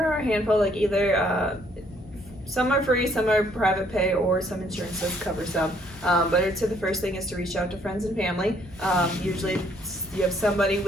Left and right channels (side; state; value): both; normal; correlation 0.66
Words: are a handful, like either some are free, some are private pay, or some insurances cover some. But I'd say the first thing is to reach out to friends and family. Usually you have somebody